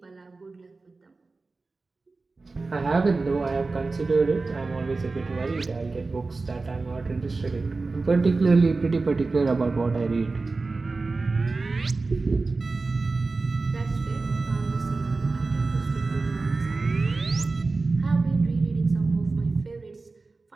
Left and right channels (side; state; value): left; quieter; 3.7 dB